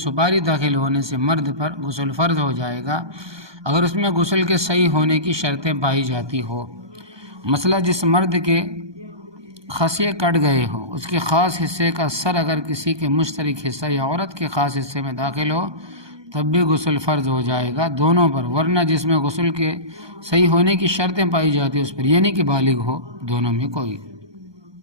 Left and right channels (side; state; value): left; late; 1.2 ms